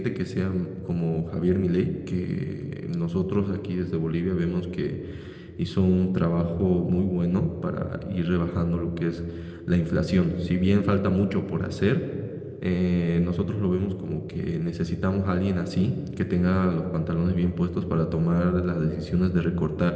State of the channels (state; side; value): identical; both; correlation 1.00